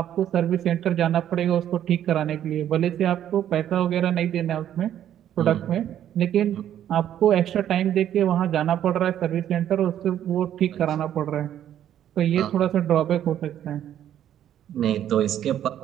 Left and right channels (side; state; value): left; quieter; 10.8 dB